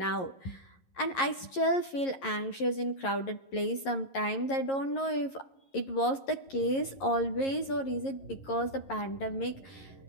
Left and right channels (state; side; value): late; right; 11 ms